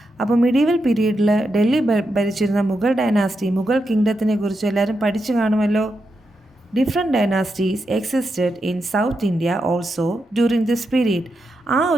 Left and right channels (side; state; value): both; normal; correlation 0.85